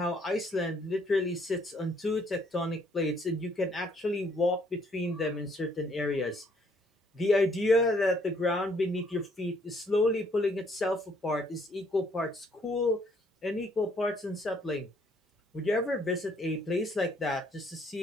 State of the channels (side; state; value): both; normal; correlation 0.66